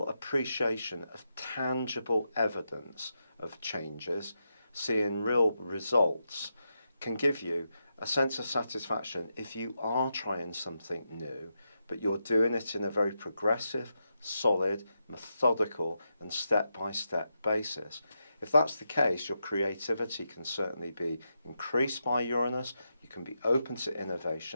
appreciation of tangible evidence of changes, seeing real results, can give you a sense of satisfaction if you are trying something new, but you're doing it in a very progressive, solid, methodical and step-by-step basis. If that's the case, your creativity can certainly be increased by Uranus. You can be open to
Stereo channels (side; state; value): both; inverted; correlation -0.85